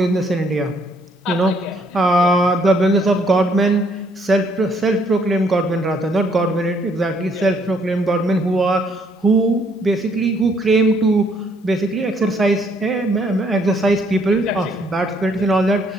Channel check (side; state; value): both; normal; correlation 0.67